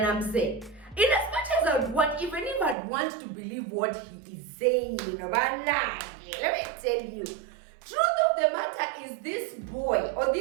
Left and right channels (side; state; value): left; drops out; at 2.8 s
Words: mzee, in as much as I would want, even if I'd want to believe what he is saying, let me tell you, truth of the matter is this boy or